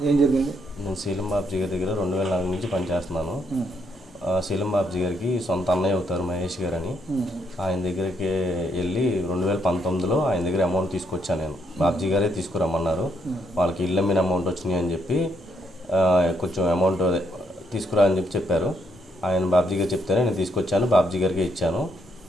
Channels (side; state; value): both; normal; correlation 0.75